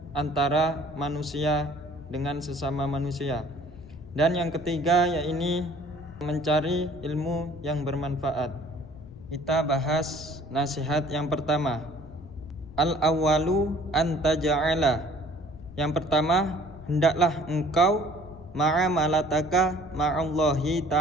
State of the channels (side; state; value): left; noise; rumble, 19 dB below the sound